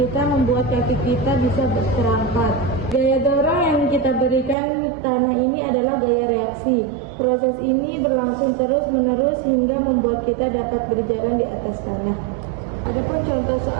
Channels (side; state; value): left; drops out; at 4.5 s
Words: membuat kaki kita bisa terangkat. Gaya dorong yang kita berikan tanah ini adalah gaya reaksi. Proses ini berlangsung terus-menerus hingga membuat kita dapat berjalan di atas tanah. Adapun contoh